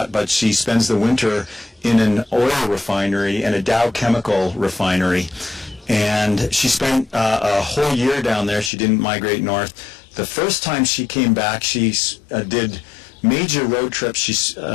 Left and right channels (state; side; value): drops out; right; at 8.7 s